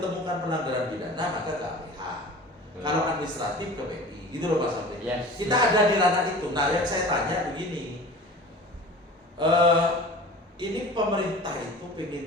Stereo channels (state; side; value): normal; both; correlation 0.40